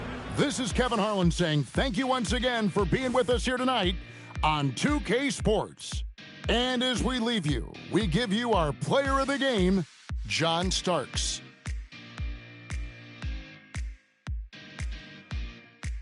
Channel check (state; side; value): identical; both; correlation 1.00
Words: this is Kevin Harlan saying thank you once again for being with us here tonight on 2K Sports. And as we leave you, we give you our player of the game, John Starks.